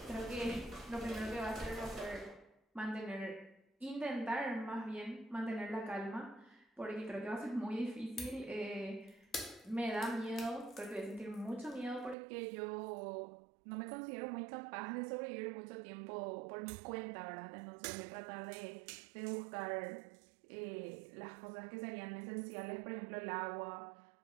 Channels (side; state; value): left; drops out; at 12.2 s